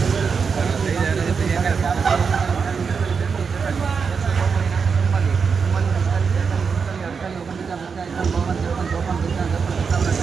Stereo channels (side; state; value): left; quieter; 5.7 dB